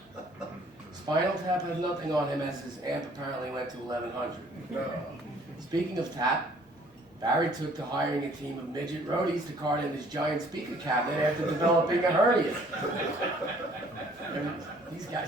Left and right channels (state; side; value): normal; both; correlation 0.58